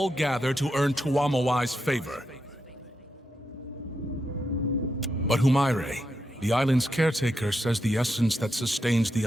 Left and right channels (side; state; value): both; normal; correlation 0.84